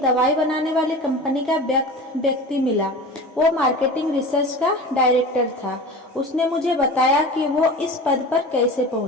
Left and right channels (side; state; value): both; normal; correlation 0.34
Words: दवाई बनाने वाली कंपनी का व्यक्ति मिला। वो मार्केटिंग रिसर्च का डायरेक्टर था। उसने मुझे बताया कि वो इस पद पर कैसे